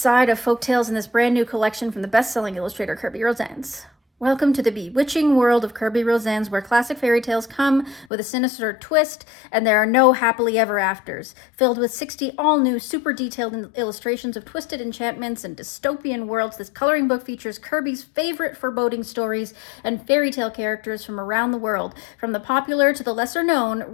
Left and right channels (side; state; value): right; drops out; at 8.1 s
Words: of folktales in this brand new collection from the best-selling illustrator Kerby Rosanes. Welcome to the bewitching world of Kerby Rosanes, where classic fairy tales come with a sinister twist, and there are no happily ever afters. Filled with 60 all-new, super detailed illustrations of twisted enchantments and dystopian worlds, this coloring book features Kerby's favorite foreboding stories and fairy tale characters from around the world, from the popular to the lesser known,